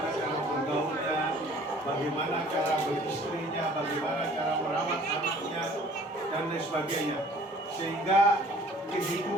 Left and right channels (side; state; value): both; normal; correlation 0.52